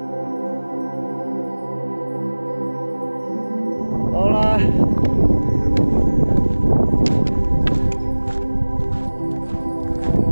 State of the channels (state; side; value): inverted; both; correlation -1.00